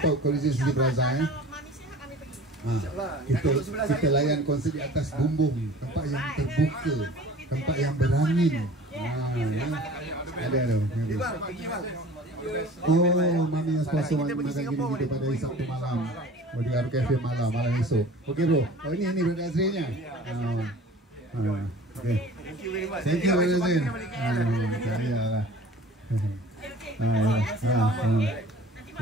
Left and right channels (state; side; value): normal; both; correlation 0.44